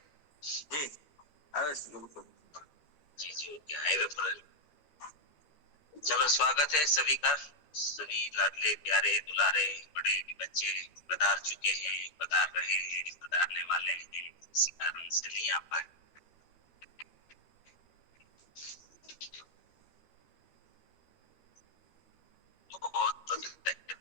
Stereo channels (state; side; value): late; right; 13 ms